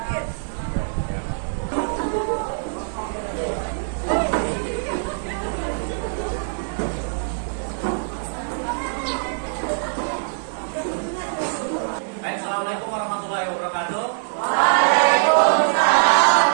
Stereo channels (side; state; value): left; silent; digital silence